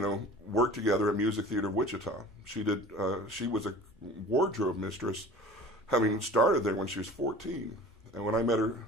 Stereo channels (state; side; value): normal; both; correlation 0.42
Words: worked together at Music Theater of Wichita. She was a wardrobe mistress having started there when she was 14. And when I met her,